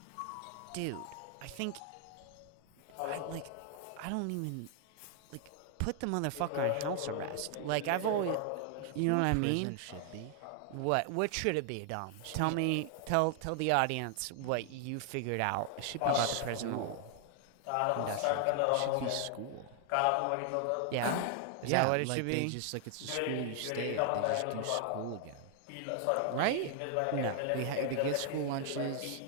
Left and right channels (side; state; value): both; different; correlation 0.00